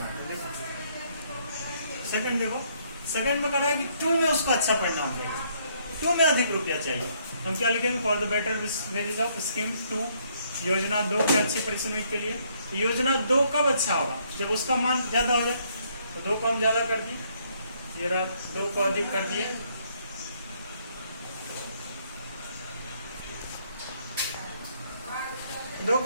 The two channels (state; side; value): inverted; both; correlation -0.69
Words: हैं। देखो सेकंड देखो, सेकंड में करना है कि 2 में उसको अच्छा परिणाम देगा, 2 में अधिक रुपया चाहिए, हम क्या लिखेंगे for the better wages of scheme 2 योजना 2 के अच्छे परिश्रमिक के लिए। योजना 2 कब अच्छा होगा जब उसका मान ज्यादा हो जाए, तो 2 को हम ज्यादा कर दिए, ये रहा 2 को अधिक कर दिए, दो